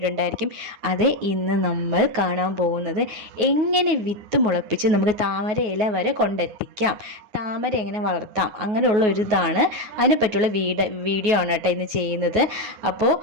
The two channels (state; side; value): late; left; 9.4 ms